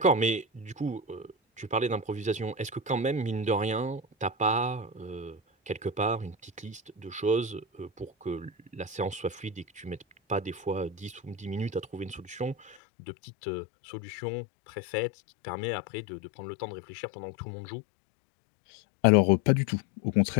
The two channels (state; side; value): drops out; right; at 12.8 s